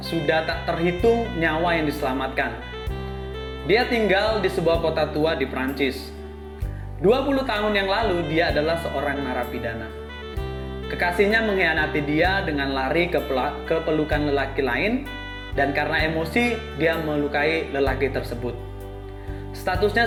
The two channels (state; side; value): identical; both; correlation 1.00